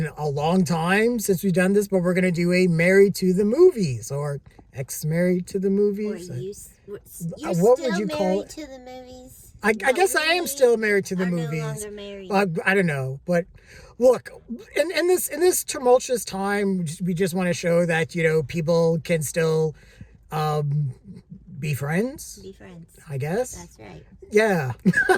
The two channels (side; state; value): both; identical; correlation 1.00